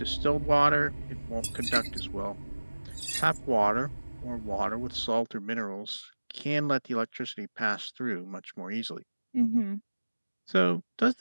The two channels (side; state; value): both; inverted; correlation -1.00